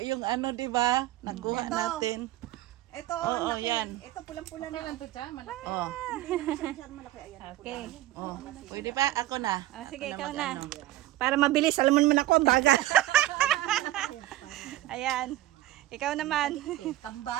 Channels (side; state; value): left; quieter; 15.3 dB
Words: yung ano, di ba? Nakuha Ito. natin. Ito, Oo, laki. yan. Ito pulang-pula Okay na. lang to, Cha. Malaki. Oh. Hindi naman siya masyadong malaki. Ayan. Okay. Oh. Pwede pa? Ako na. Ah, sige, Ako ikaw mag-ano. na. Para mabilis, alam mo naman ako, ang bagal. Ayan. Ikaw naman.